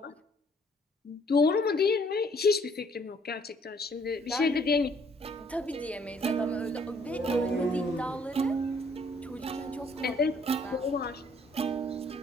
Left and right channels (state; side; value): normal; both; correlation 0.63